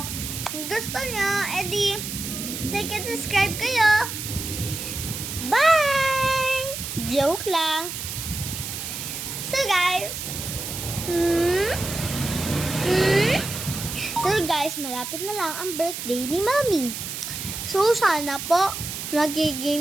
Kung gusto nyo, edi like and subscribe kayo. Bye! Joke lang. So guys, malapit na lang ang birthday ni Mommy. So sana po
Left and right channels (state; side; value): noise; right; hiss, 6 dB below the sound